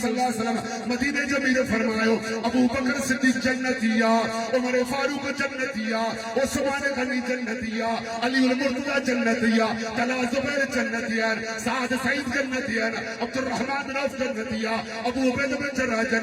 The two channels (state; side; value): identical; both; correlation 1.00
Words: اللہ علیہ وسلم مدینہ جمیل فرمایو ابو بکر صدیق جنتیا عمر فاروق جنتیا عثمان غنی جنتیا علی المرتضی جنتیا طلحہ زبیر جنتیا سعد سعید جنتیا عبد الرحمن بن عوف جنتیا ابو عبیدہ بن جراح